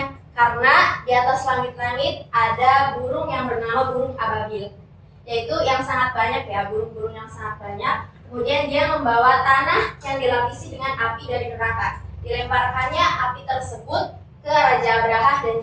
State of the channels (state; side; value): identical; both; correlation 1.00